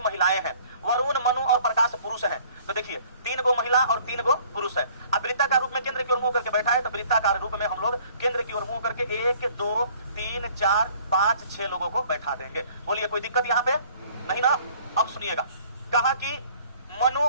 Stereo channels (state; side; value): inverted; both; correlation -0.55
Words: हैं, वरुण, मनु और प्रकाश पुरुष हैं। तो देखिए 3 गो महिला और 3 गो पुरुष है। अब वृत्ताकार रूप में केंद्र की ओर मुंह करके बैठा है, तो वृत्ताकार रूप में हम लोग केंद्र की ओर मुंह करके 1 2 3 4 5 6 लोगों को बैठा देंगे। बोलिए कोई दिक्कत यहाँ पे नहीं ना? अब सुनिएगा, कहा कि मनु,